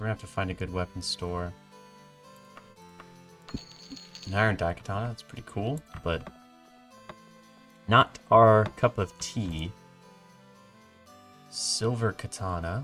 gonna have to find a good weapons store. An iron daikatana, that's pretty cool, but not our cup of tea. Silver katana.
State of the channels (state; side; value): identical; both; correlation 1.00